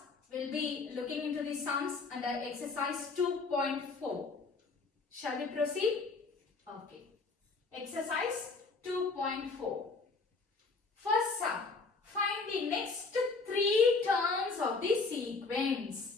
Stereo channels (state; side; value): quieter; right; 4.1 dB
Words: we'll be looking into the sums under exercise 2.4. Shall we proceed? Okay. Exercise 2.4. First sum. Find the next 3 terms of the